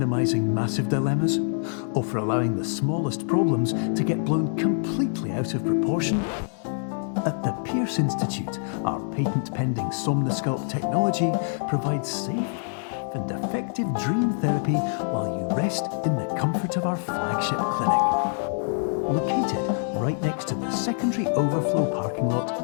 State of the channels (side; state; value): right; silent; 61 dB below the other